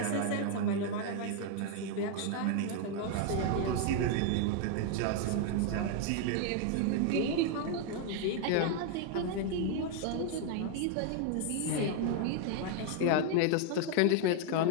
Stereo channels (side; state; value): both; different; correlation 0.01